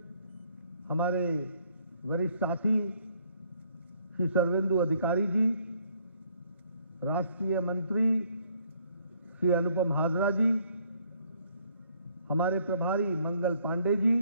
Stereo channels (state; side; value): inverted; both; correlation -0.65